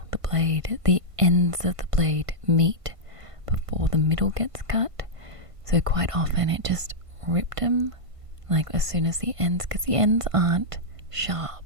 the blade. The ends of the blade meet before the middle gets cut. So quite often it just ripped them, like as soon as the ends, because the ends aren't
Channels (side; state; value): left; late; 1.5 ms